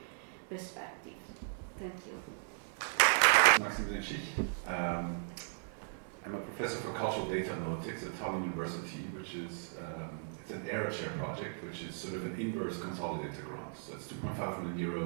perspectives. Thank you. Maxim Zenchich. I'm a professor for cultural data analytics at Tallinn University, which is it's an ERA chair project, which is sort of an inverse consolidator grant. So it's 2.5 million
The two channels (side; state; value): left; silent; digital silence